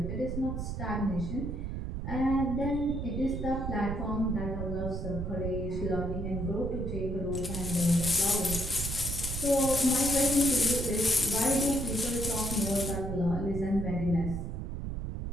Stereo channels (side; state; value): right; noise; rumble, 4 dB below the sound